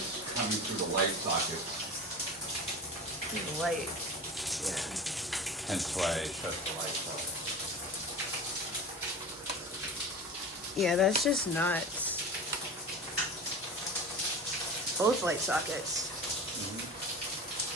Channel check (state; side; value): normal; both; correlation 0.32